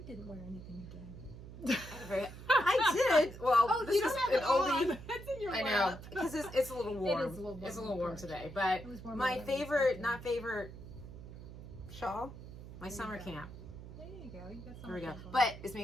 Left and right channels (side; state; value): right; noise; hum, 13 dB below the sound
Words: didn't wear anything today. I did. Well, Oh, this you is don't an have it on. oldie. It's in your I know, lap. because it's a little warm. It is a little warm. It's a little warm today. But It was warmer my than I favorite, expected. shawl, my There you summer go. camp. There you go. You got There we go. something on. But it's